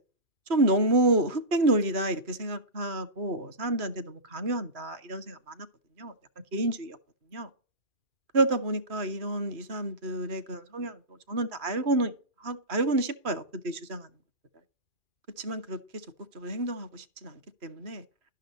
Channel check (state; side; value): late; left; 2.4 ms